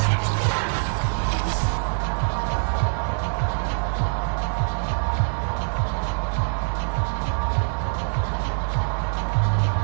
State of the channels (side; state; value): left; silent; 63 dB below the other